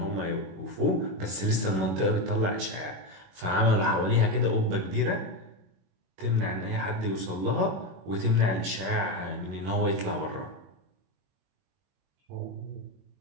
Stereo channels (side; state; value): left; late; 21 ms